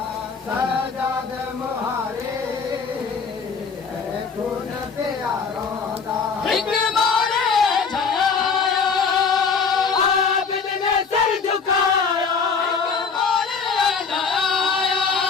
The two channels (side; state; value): right; quieter; 5.5 dB